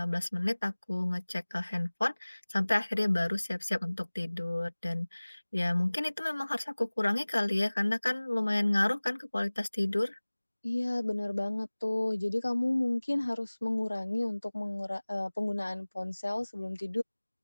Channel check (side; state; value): both; inverted; correlation -1.00